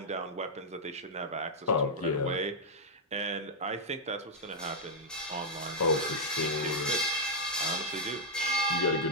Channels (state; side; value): normal; both; correlation -0.05